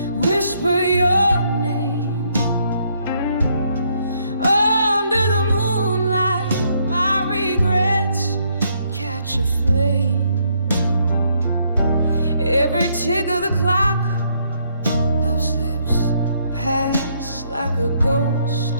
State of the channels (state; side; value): inverted; both; correlation -0.72